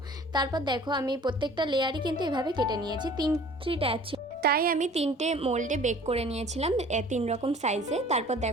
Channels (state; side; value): normal; both; correlation 0.49